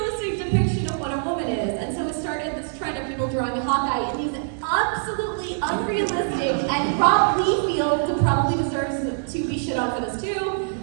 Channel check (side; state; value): left; silent; digital silence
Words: depiction of what a woman is. And so it started this trend of people drawing Hawkeye in these absolutely unrealistic, and Rob Liefeld probably deserves to be shit on for this too.